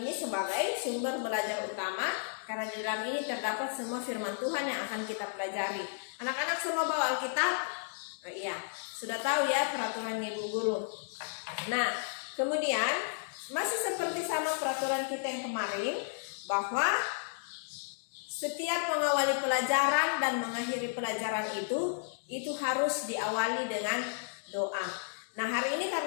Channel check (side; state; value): right; silent; digital silence